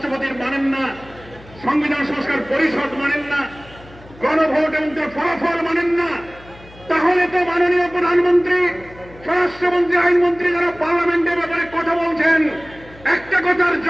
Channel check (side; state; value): left; noise; hum, 22 dB below the sound